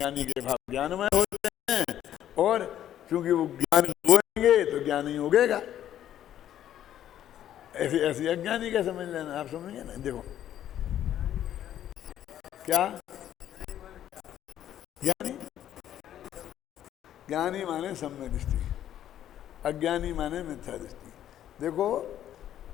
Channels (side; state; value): right; quieter; 11.2 dB